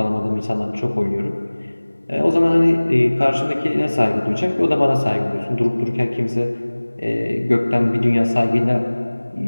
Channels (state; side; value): inverted; both; correlation -1.00